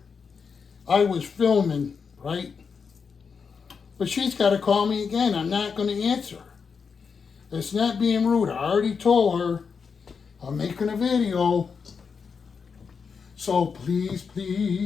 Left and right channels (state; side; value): quieter; right; 5.8 dB